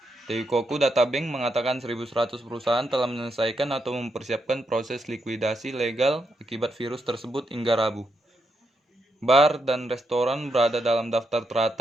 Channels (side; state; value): both; normal; correlation 0.81